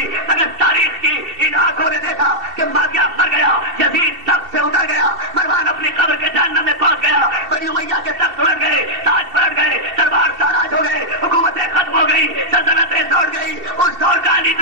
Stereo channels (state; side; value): late; left; 2.7 ms